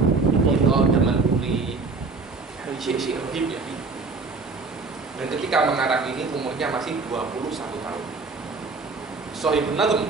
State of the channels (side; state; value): left; quieter; 4.1 dB